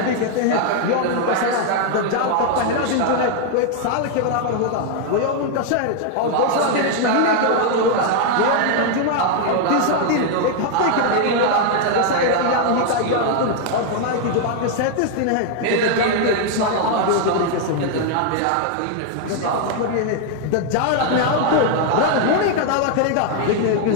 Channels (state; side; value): different; both; correlation 0.00